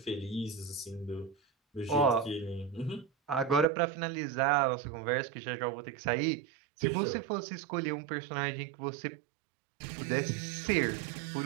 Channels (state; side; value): drops out; left; at 3.7 s